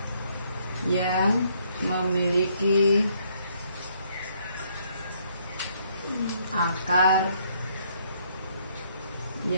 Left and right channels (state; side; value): inverted; both; correlation -0.69